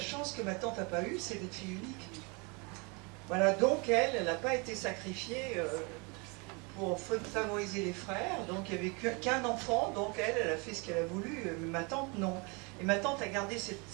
que ma tante n'a pas eue, c'est d'être fille unique. Voilà, donc elle n'a pas été sacrifiée pour favoriser les frères, donc il n'y avait qu'un enfant, donc elle a fait ce qu'elle a voulu, mais ma tante, non. Et ma tante a gardé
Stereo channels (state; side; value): quieter; left; 30.5 dB